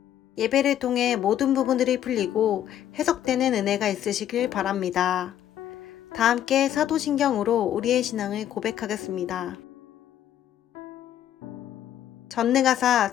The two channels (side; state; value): right; quieter; 11.0 dB